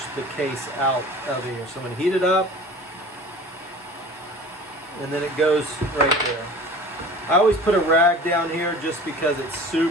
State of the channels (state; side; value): normal; both; correlation 0.41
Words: case out of here. So I'm going to heat it up, and then it goes right there. I always put a rag down here just because it's